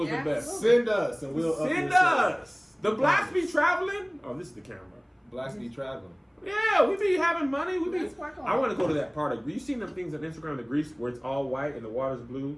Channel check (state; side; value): identical; both; correlation 1.00